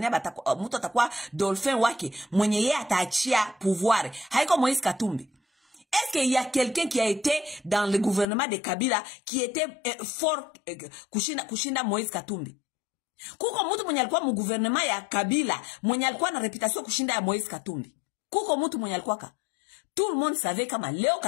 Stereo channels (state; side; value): drops out; right; at 8.2 s